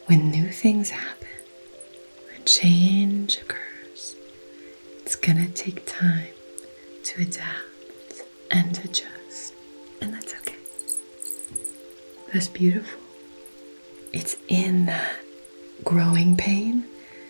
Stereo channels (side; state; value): both; inverted; correlation -1.00